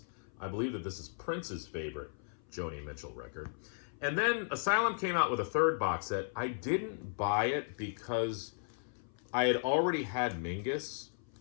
I believe that this is Prince's favorite Joni Mitchell record. And then Asylum came out with a third box set. I didn't buy it because I had already had Mingus.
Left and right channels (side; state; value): right; silent; 54 dB below the other